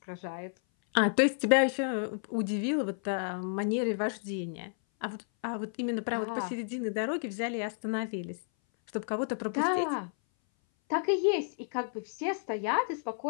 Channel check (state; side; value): silent; right; 57 dB below the other